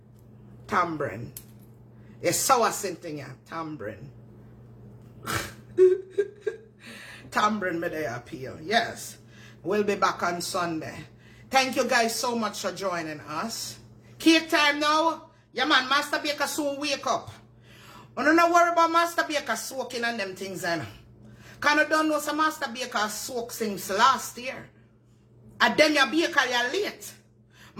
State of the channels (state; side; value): identical; both; correlation 1.00